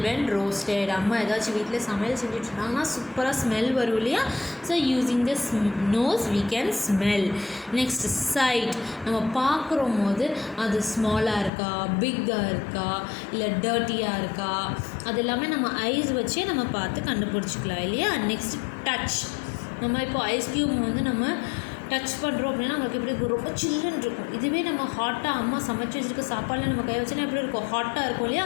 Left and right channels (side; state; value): right; drops out; at 11.5 s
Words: வென் ரோஸ்டட். அம்மா ஏதாச்சும் வீட்டில் சமையல் செஞ்சுட்டு இருந்தாங்கன்னா சூப்பராக ஸ்மெல் வரும் இல்லையா? So using the nose we can smell. Next sight. நம்ம பார்க்குறோம் போது அது ஸ்மாலாக இருக்கா, பிக்காக இருக்கா, இல்லை டர்ட்டியாக இருக்கா, அது எல்லாமே நம்ம ஐஸ் வச்சே நம்ம பார்த்து கண்டுபிடிச்சிக்கலாம் இல்லையா? Next touch. நம்ம இப்போ ஐஸ் க்யூப் வந்து நம்ம டச் பண்ணுறோம் அப்படின்னா நம்மளுக்கு எப்படி இருக்கும், ரொம்ப சில்லுன்னு இருக்கும். இதுவே நம்ம ஹாட்டாக அம்மா சமைச்சு வச்சுருக்க சாப்பாடில் நம்ம கை வச்சோன்னா எப்படி இருக்கும், ஹாட்டாக இருக்கும் இல்லையா?